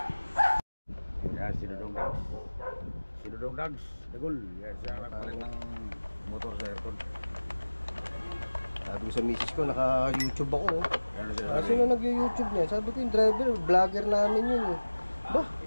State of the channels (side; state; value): both; inverted; correlation -1.00